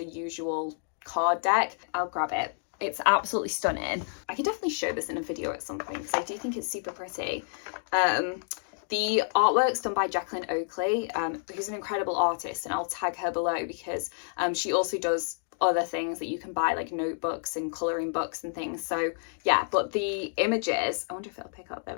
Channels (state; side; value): silent; right; digital silence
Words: usual card deck. I'll grab it. It's absolutely stunning. I can definitely show this in a video at some point because I do think it's super pretty. The artwork's done by Jacqueline Oakley, who's an incredible artist, and I'll tag her below because she also does other things that you can buy, like notebooks and colouring books and things. So yeah, but the images, I wonder if it'll pick up, there